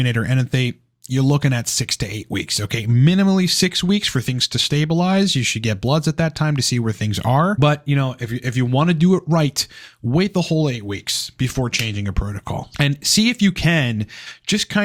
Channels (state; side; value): identical; both; correlation 1.00